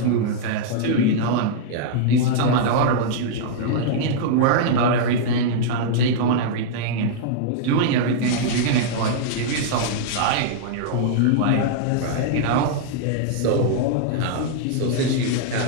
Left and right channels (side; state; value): both; different; correlation -0.01